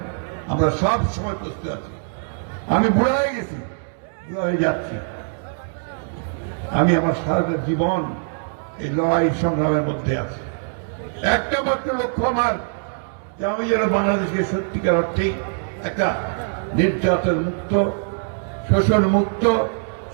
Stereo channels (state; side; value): silent; left; 64 dB below the other